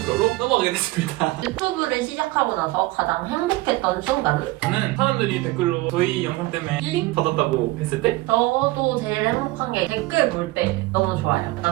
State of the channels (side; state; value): left; quieter; 19.9 dB